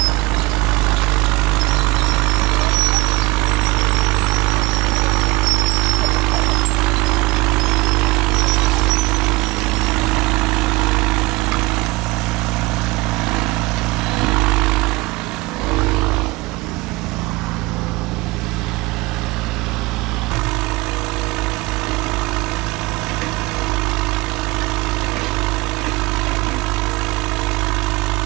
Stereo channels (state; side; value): quieter; left; 22.0 dB